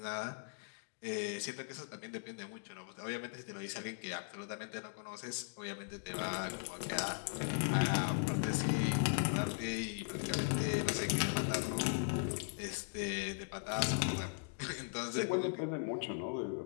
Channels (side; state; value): right; silent; digital silence